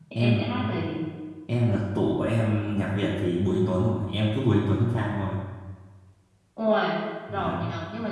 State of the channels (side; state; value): both; identical; correlation 1.00